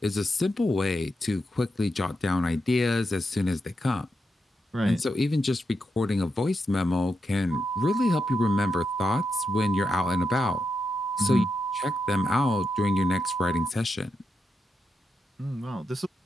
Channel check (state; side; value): normal; both; correlation 0.85